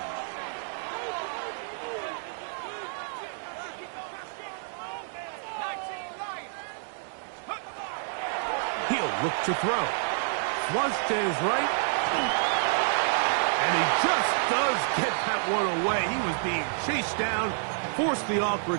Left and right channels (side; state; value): left; silent; digital silence